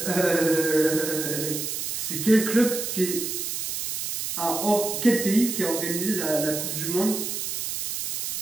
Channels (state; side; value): noise; right; hiss, 3 dB below the sound